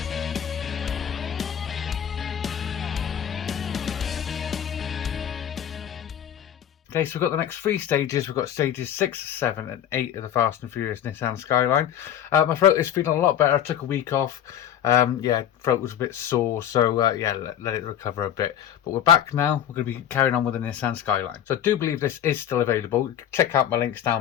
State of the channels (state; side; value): quieter; right; 10.0 dB